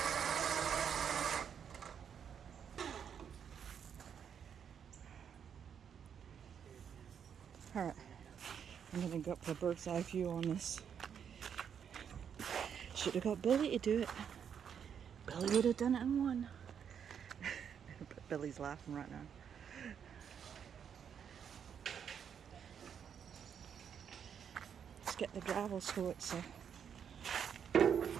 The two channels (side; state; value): left; quieter; 7.8 dB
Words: Alright, I'm gonna go up for a bird's eye view on this. Should have got Billy to do it. Billy would have done it in one. But Billy's laughing right now. Let's get the gravel so it's Tell